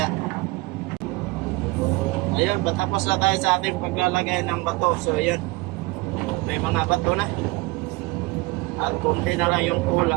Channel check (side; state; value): left; quieter; 23.1 dB